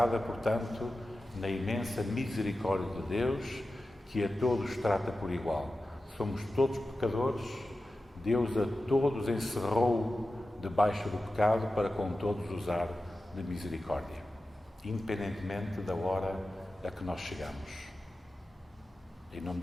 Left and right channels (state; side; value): normal; both; correlation 0.93